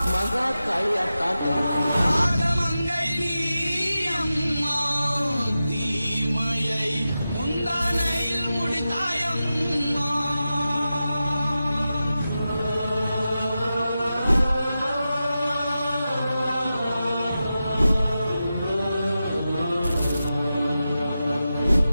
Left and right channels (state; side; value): inverted; both; correlation -0.92